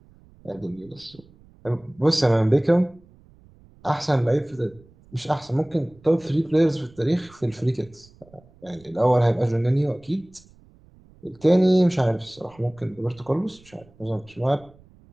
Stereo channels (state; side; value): noise; right; rumble, 27 dB below the sound